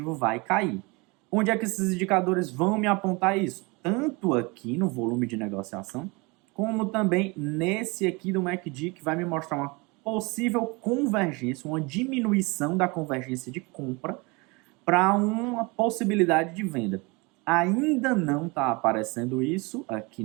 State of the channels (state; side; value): quieter; left; 27.1 dB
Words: vai cair. Onde é que esses indicadores vão me apontar isso? Tanto aqui no volume de negociação, como também nesse aqui do MACD, que vai me mostrar uma possível convergência, uma diminuição da convergência de compra para uma possibilidade de venda. Ainda não está aparecendo isso aqui